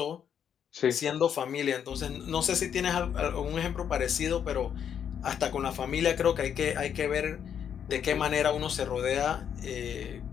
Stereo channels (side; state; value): right; quieter; 8.5 dB